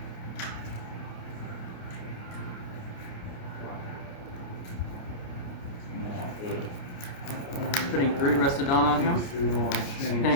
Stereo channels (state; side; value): late; right; 28 ms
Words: And then I'll put Putting 3 Rusted Dawn on him. 2 on Shanks.